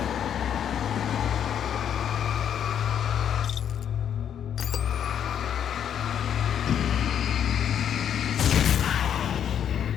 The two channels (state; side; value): quieter; right; 9.0 dB